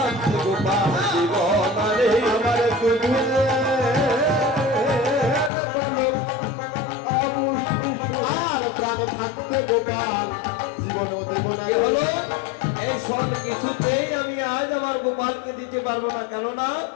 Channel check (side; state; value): right; drops out; at 5.5 s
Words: গোপাল জীবনারে আমার দুধের বালক আর প্রাণ থাকতে গোপাল জীবন কি হলো এই সব কিছুতেই আমি আজ আমার গোপালকে দিতে পারবো না, কেননা